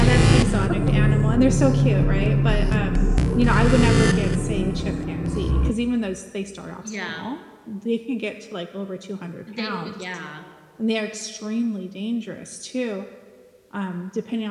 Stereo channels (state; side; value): identical; both; correlation 1.00